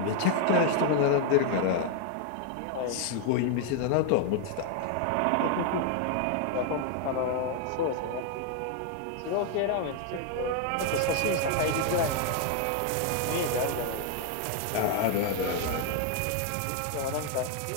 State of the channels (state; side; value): different; both; correlation 0.00